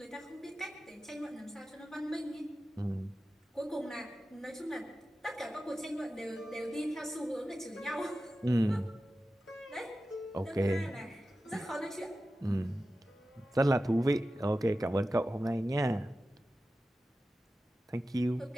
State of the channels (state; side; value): normal; both; correlation 0.94